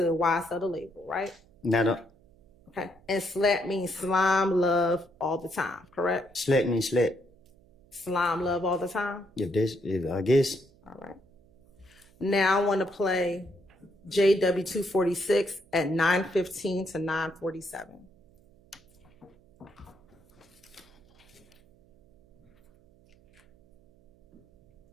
YSL the label, right? Not. Okay. And slap means slime, love, all the time, correct? Slap means slap. Slime, love, all the time? I guess. All right. Now I want to play JW246 at 9:15 to 9:47.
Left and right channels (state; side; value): noise; right; hum, 30 dB below the sound